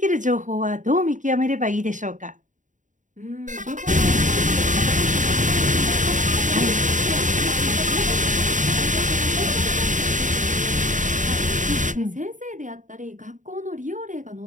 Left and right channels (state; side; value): late; left; 0.37 ms